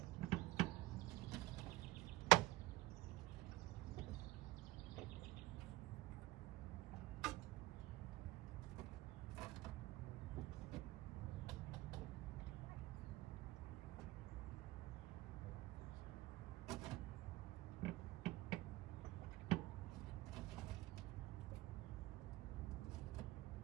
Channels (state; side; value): quieter; left; 18.7 dB